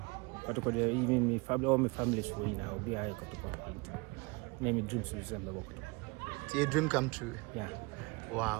Kotoko dey even me family all my family so na obi aye Kotoko. Na me dream so say me work. So your dream come true. Yeah.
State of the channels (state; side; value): quieter; left; 26.7 dB